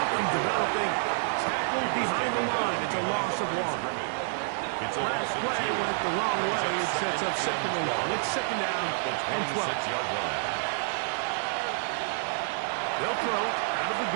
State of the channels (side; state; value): left; silent; digital silence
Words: developing. Tackled behind the line. It's a loss of one. Last play went the wrong way. It sets up second and long. It's second down and 12. They'll throw out of the